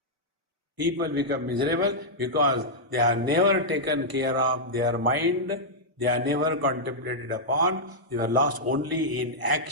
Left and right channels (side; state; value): left; late; 1.0 ms